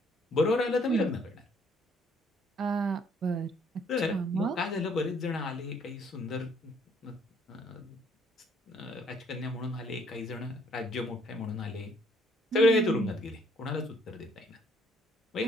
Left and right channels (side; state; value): both; normal; correlation 0.64